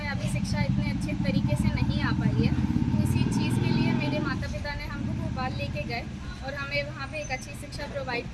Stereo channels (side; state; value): both; identical; correlation 1.00